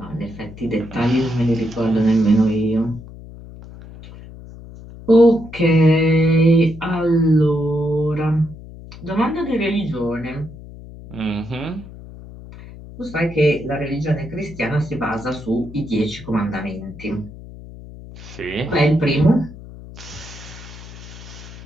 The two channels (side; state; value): left; noise; hum, 16 dB below the sound